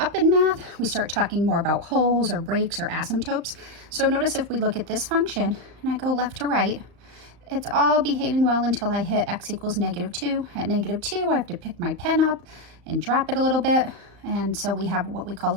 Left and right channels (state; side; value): late; left; 35 ms